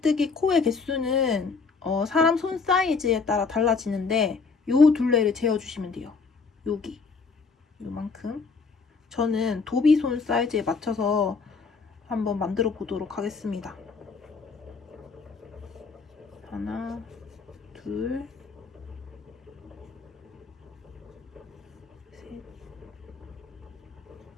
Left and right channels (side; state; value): right; quieter; 4.8 dB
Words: 코의 개수는 사람 손 사이즈에 따라 달라지는데 요 둘레를 재어주시면 돼요. 여기 요만큼. 저는 도비손 사이즈에 맞춰서 한번 만들어 보도록 하겠습니다. 하나, 둘, 셋,